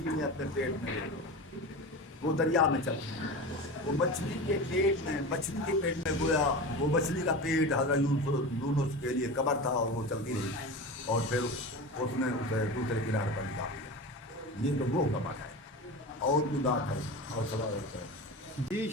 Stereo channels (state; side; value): normal; both; correlation 0.28